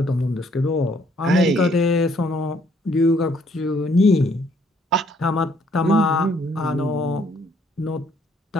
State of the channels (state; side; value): normal; both; correlation 0.66